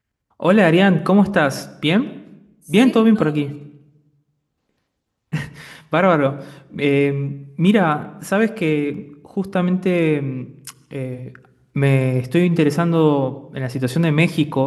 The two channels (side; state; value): both; identical; correlation 1.00